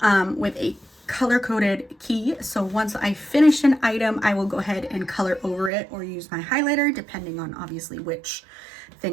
with a color-coded key. So once I finish an item, I will go ahead and color over it or use my highlighter, depending on obviously which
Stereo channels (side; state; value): left; drops out; at 5.7 s